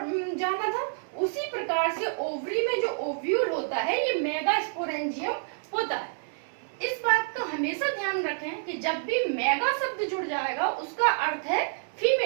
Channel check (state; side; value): silent; left; 59 dB below the other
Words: में जाना था, उसी प्रकार से ओवरी में जो ओव्यूल होता है ये मेगास्पोरेंजियम होता है। इस बात का हमेशा ध्यान रखें कि जब भी मेगा शब्द जुड़ जाएगा उसका अर्थ है